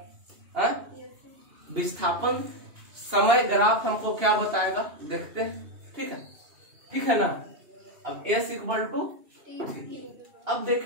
विस्थापन समय ग्राफ हमको क्या बताएगा, देखते हैं, ठीक है ना। अब S इक्वल टू, अब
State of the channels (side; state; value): left; late; 2.7 ms